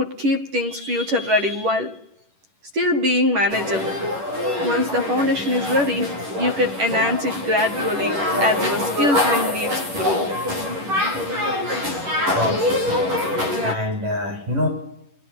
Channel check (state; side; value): late; left; 11 ms